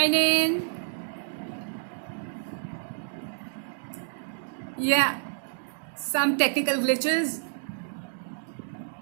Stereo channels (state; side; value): silent; left; digital silence